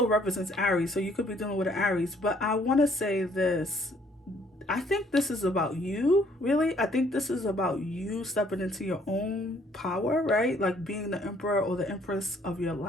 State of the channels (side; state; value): both; normal; correlation 0.63